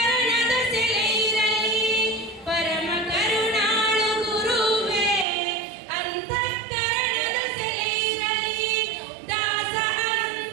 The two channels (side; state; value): left; drops out; at 5.2 s